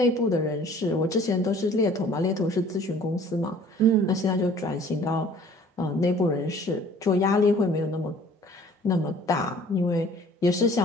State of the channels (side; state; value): both; normal; correlation 0.52